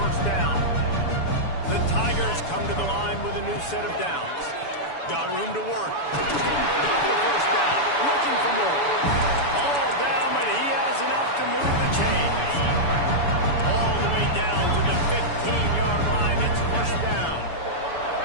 first down. The Tigers come to the line with a new set of downs. Got room to work. Got the first down. Looking for more. All down, but he has enough to move the chains. All the way down to the 15-yard line. It's first down.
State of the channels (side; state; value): right; late; 7.0 ms